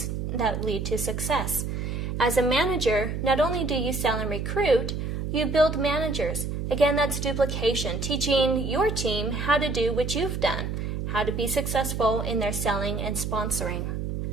that lead to success. As a manager, not only do you sell and recruit, you build managers. Again, that's duplication, teaching your team how to do what you've done, how to be successful in their selling and sponsoring.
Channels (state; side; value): noise; right; hum, 3 dB below the sound